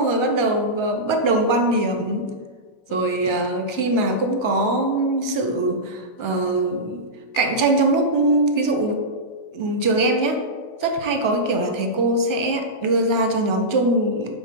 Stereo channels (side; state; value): right; late; 16 ms